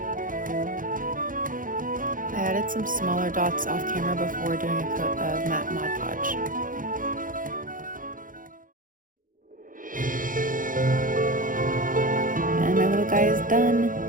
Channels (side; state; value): left; late; 0.39 ms